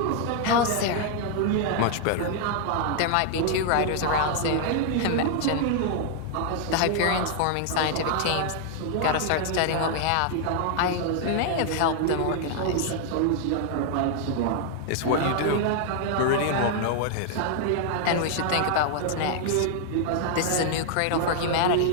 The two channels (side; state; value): both; different; correlation 0.00